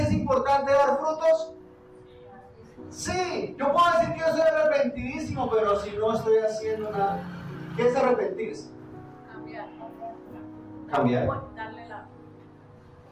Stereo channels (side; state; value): both; identical; correlation 1.00